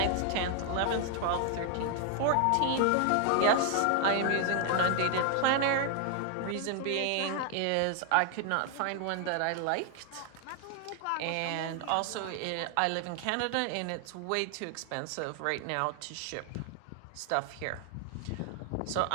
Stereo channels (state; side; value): different; both; correlation 0.00